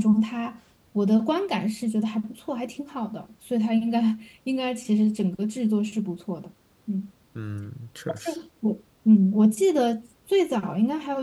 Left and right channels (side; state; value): both; identical; correlation 1.00